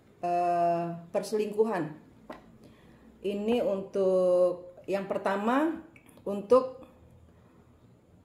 perselingkuhan. Ini untuk yang pertama, untuk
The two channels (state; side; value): identical; both; correlation 1.00